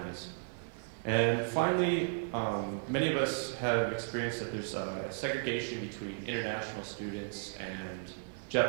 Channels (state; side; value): silent; left; digital silence